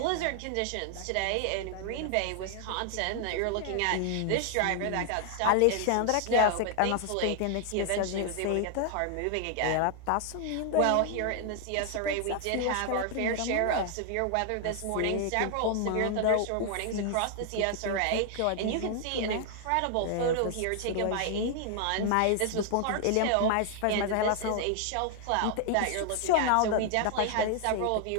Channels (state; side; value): different; both; correlation 0.00